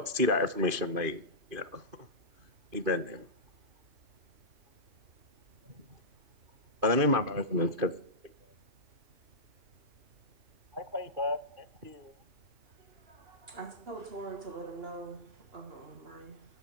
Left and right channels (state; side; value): late; left; 2.5 ms